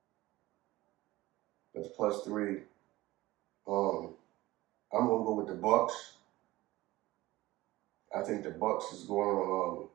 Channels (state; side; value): quieter; left; 18.2 dB